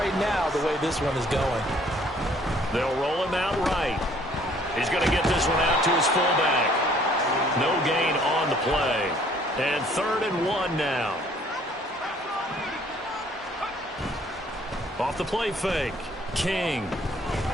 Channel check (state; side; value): normal; both; correlation 0.59